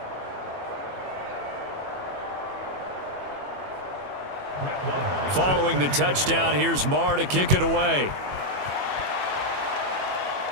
Following the touchdown, here's Marr to kick it away.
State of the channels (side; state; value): left; late; 21 ms